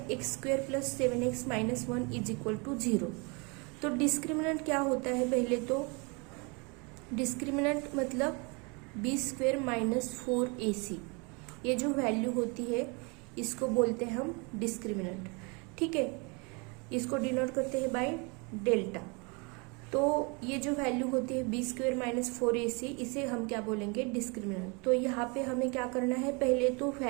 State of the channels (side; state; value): left; quieter; 30.9 dB